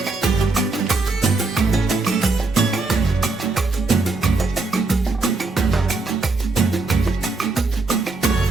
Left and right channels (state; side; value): quieter; left; 3.6 dB